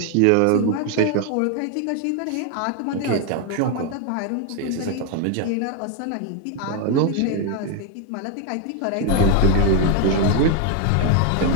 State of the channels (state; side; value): different; both; correlation 0.01